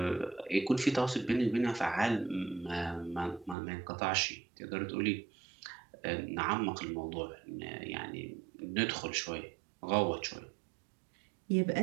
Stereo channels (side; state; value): left; drops out; at 3.6 s